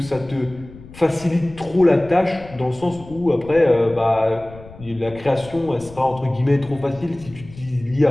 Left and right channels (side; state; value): left; noise; rumble, 19 dB below the sound